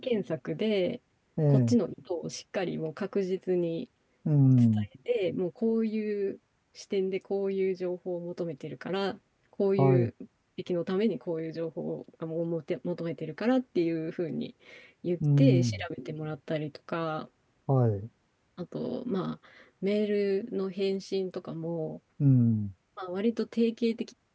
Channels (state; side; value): identical; both; correlation 1.00